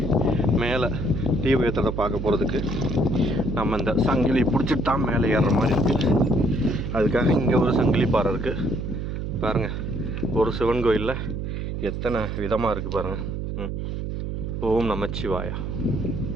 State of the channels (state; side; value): noise; right; hum, 4 dB below the sound